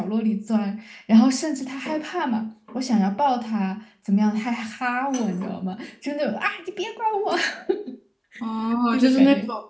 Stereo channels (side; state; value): both; identical; correlation 1.00